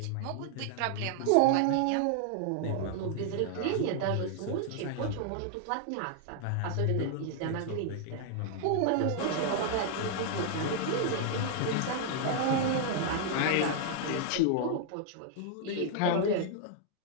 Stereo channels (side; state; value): both; different; correlation 0.00